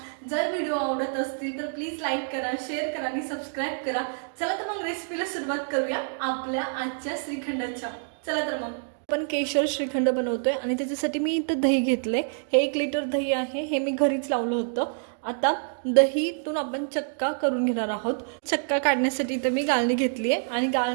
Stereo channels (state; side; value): silent; left; digital silence